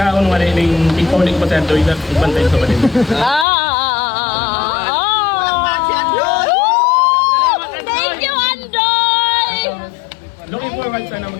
wala yung ikaw pa sa doy lang, ibantay sa palibaga. Thank you, Andoy! Looking forward sana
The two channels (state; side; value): drops out; right; at 3.5 s